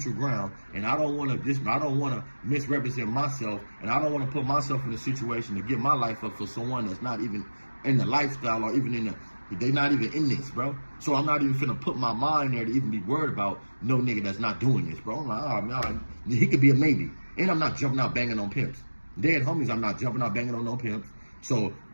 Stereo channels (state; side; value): inverted; both; correlation -1.00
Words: ground and I don't want to misrepresent myself and I don't want to put myself in a situation to give my life up for someone that's not even in the lifestyle or even in the, they not even in this, bro. So I'm not even finna put my mind there to even be worried about no nigga that's not doing this, bro. I'm like, oh, man, he could be a maybe. And I'm not jumping out banging on pimps. Dead homies, I'm not jumping out banging on no pimps. So